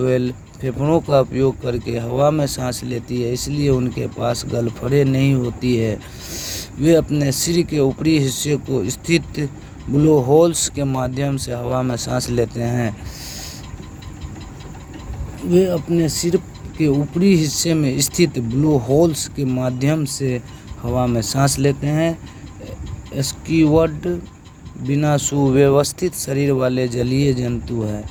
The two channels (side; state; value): both; identical; correlation 1.00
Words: फेफड़ों का उपयोग करके हवा में सांस लेती है, इसलिए उनके पास गलफड़े नहीं होती है। वे अपने सिर के ऊपरी हिस्से को स्थित ब्लो होल्स के माध्यम से हवा में सांस लेते हैं। वे अपने सिर के ऊपरी हिस्से में स्थित ब्लो होल्स के माध्यम से हवा में सांस लेते हैं। स्क्विड बिना सुव्यवस्थित शरीर वाले जलीय जंतु है।